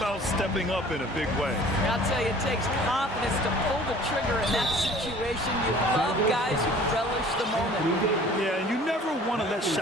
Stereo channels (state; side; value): normal; both; correlation 0.49